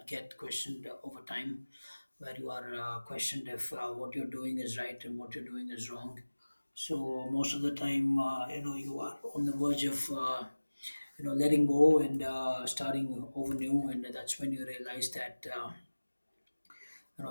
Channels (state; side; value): inverted; both; correlation -1.00